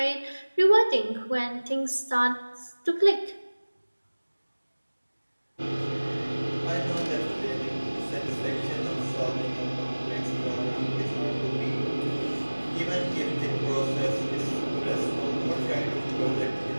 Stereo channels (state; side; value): inverted; both; correlation -1.00